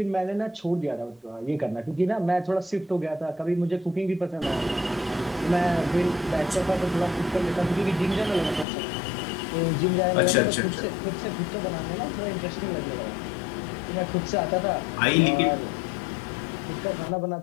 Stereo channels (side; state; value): right; drops out; at 8.7 s